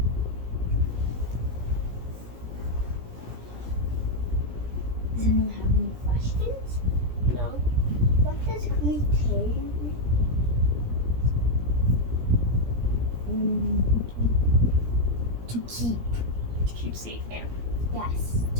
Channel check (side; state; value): left; late; 17 ms